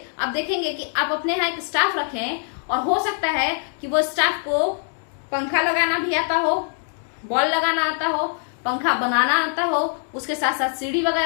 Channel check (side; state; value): right; silent; 57 dB below the other